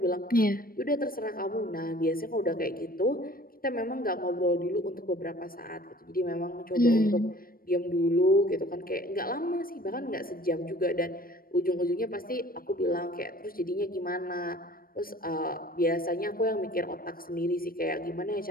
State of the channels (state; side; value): late; right; 0.42 ms